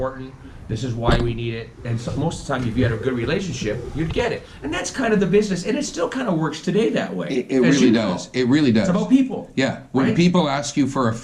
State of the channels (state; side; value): identical; both; correlation 1.00